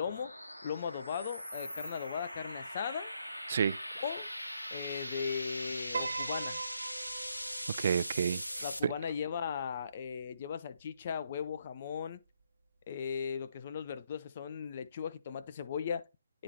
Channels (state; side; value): inverted; both; correlation -0.74